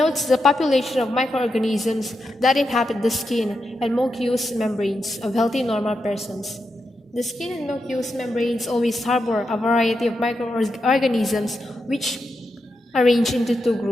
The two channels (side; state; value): both; normal; correlation 0.86